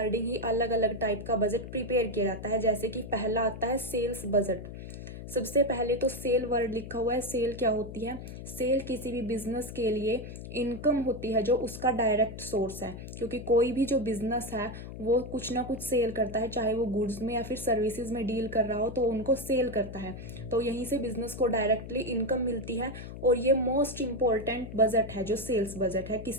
ही अलग अलग टाइप का बजट प्रिपेयर किया जाता है। जैसे कि पहला आता है सेल्स बजट। सबसे पहले तो सेल वर्ड लिखा हुआ है। सेल क्या होती है? सेल किसी भी बिजनेस के लिए इनकम होती है जो उसका डायरेक्ट सोर्स है। क्योंकि कोई भी जो बिजनेस है वो कुछ ना कुछ सेल करता है, चाहे वो गुड्स में या फिर सर्विसेज में डील कर रहा हो, तो उनको सेल करता है। तो यहीं से बिजनेस को डायरेक्टली इनकम मिलती है। और ये मोस्ट इंपॉर्टेंट बजट है जो सेल्स बजट है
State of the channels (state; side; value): noise; left; hum, 11 dB below the sound